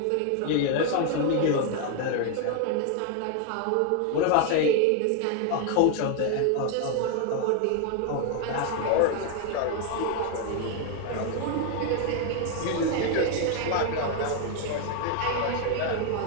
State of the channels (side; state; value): both; different; correlation 0.01